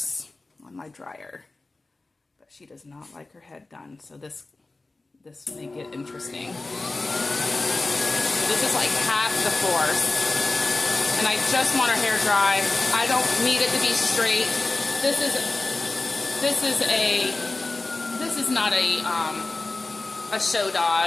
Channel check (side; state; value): right; quieter; 3.3 dB